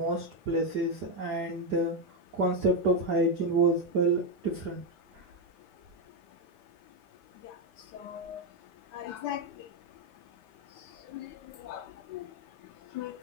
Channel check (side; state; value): both; normal; correlation 0.05